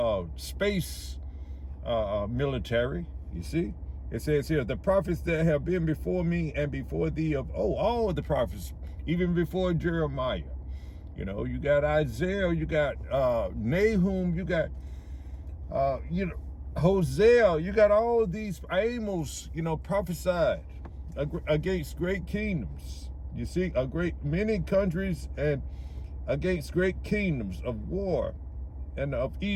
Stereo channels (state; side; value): identical; both; correlation 1.00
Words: space military, you see. It says here, the prophets that have been before me and before thee of, all of the prophets, even before Jeremiah, you got Isaiah, you got Nahum, you got, Hosea, you got all these Amos, prophesied against great kingdoms. You see, many countries and against great kingdoms of war and of